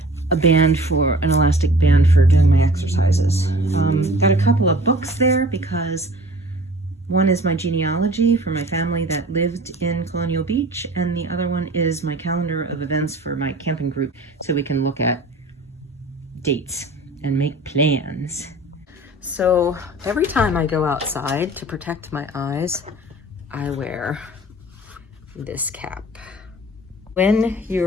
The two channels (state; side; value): normal; both; correlation 0.45